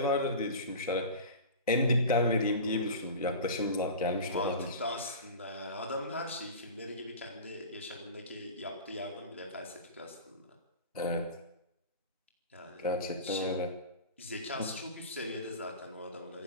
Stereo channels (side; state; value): both; inverted; correlation -0.33